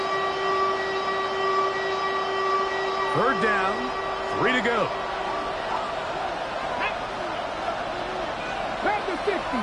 Third down, 3 to go.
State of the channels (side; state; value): both; identical; correlation 1.00